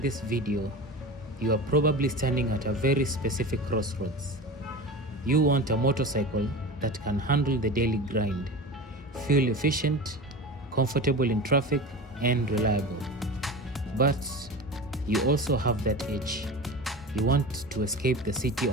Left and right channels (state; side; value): normal; both; correlation 0.31